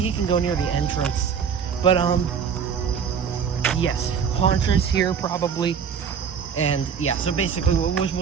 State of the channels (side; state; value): left; quieter; 6.9 dB